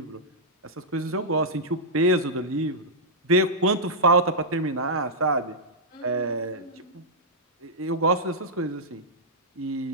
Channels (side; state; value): both; normal; correlation -0.11